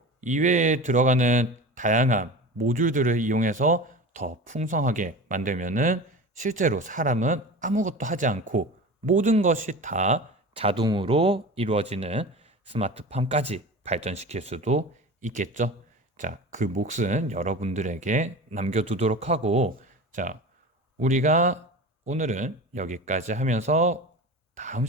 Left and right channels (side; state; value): both; normal; correlation 0.33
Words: 이외에 들어가는 다양한 모듈들을 이용해서 더 풍성하게 만들면은 실제로 사람은 아무것도 하지 않고 모든 것이 다 자동으로 이루어지는 스마트팜까지 발전시킬 수도 있겠죠. 자, 그 몫은 여러분들에게 남겨두도록 하고, 자, 우리가 오늘은 여기까지 하면서 다음